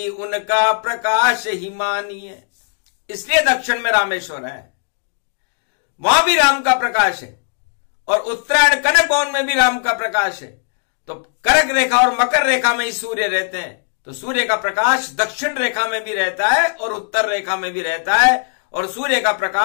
उनका प्रकाश ही मानिए। इसलिए दक्षिण में रामेश्वर है, वहां भी राम का प्रकाश है, और उत्तरायण कनक भवन में भी राम का प्रकाश है। तो करक रेखा और मकर रेखा में ही सूर्य रहते हैं। तो सूर्य का प्रकाश दक्षिण रेखा में भी रहता है और उत्तर रेखा में भी रहता है, और सूर्य का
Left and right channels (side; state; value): right; silent; digital silence